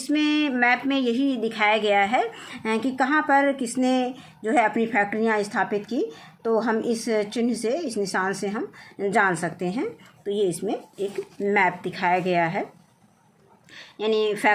मैप में यही दिखाया गया है कि कहाँ पर किसने जो है अपनी फैक्ट्रियाँ स्थापित की। तो हम इस चिन्ह से, इस निशान से हम जान सकते हैं। तो ये इसमें एक मैप दिखाया गया है, यानी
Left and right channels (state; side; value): identical; both; correlation 1.00